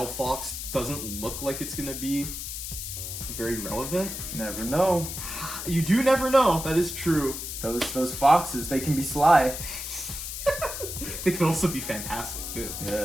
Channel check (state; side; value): noise; left; hiss, 6 dB below the sound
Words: doesn't look like it's going to be very relevant. Never know. You do never know. That is true. Those foxes, they can be sly. They can also be fantastic too.